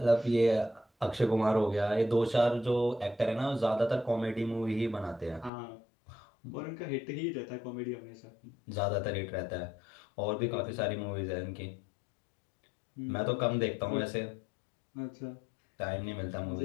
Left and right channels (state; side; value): drops out; right; at 5.5 s